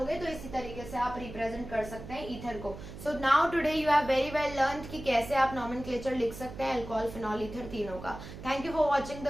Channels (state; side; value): noise; right; hum, 12 dB below the sound